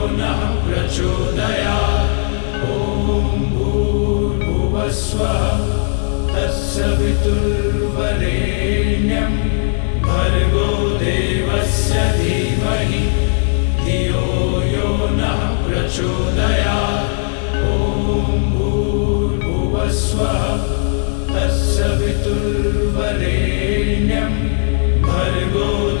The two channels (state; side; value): silent; right; digital silence